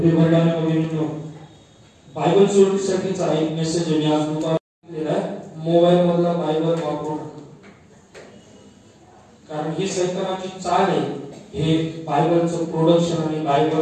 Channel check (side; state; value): both; identical; correlation 1.00